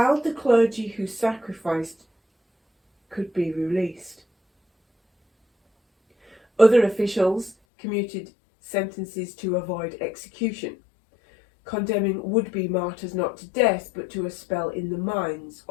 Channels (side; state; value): right; drops out; at 7.6 s